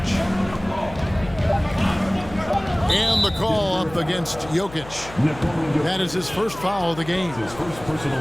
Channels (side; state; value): left; noise; hum, 16 dB below the sound